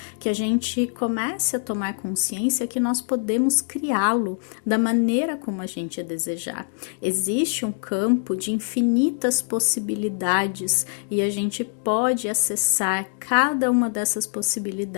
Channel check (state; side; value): silent; right; digital silence